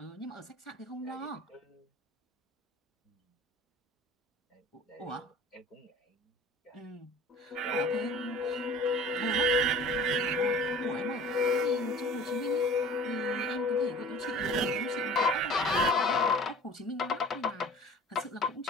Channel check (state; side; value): normal; both; correlation 0.44